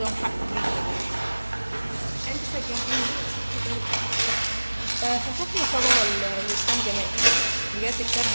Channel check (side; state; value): both; inverted; correlation -1.00